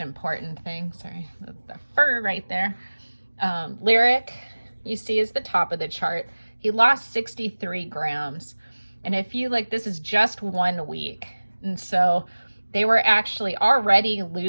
important thing. Sorry, the fur right there. Lyric, you see, is the top of the chart. He lost 63 grams. And if you look, this is just 1 week. And so they were actually already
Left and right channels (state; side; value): inverted; both; correlation -1.00